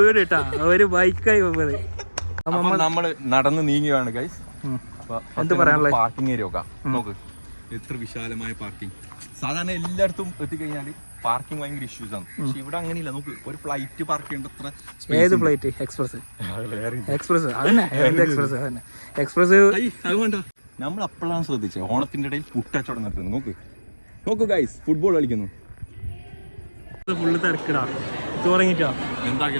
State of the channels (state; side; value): inverted; both; correlation -1.00